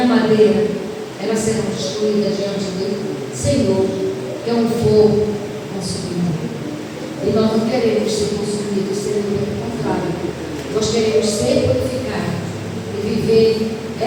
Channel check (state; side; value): identical; both; correlation 1.00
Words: madeira, elas serão destruídas diante do Senhor, que é um fogo consumidor. E nós não queremos ser consumidos, ser pelo contrário. Nós queremos ser purificados e viver